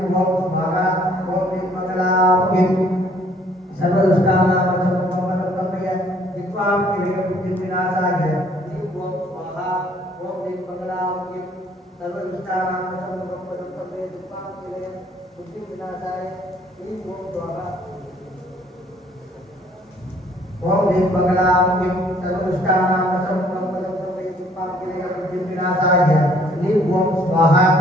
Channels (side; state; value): both; normal; correlation 0.61